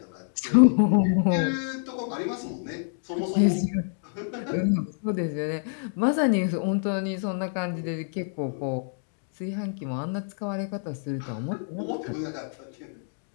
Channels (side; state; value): right; silent; digital silence